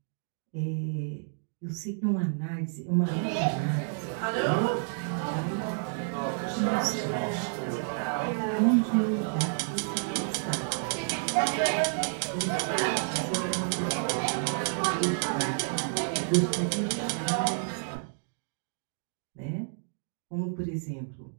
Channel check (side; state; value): left; silent; digital silence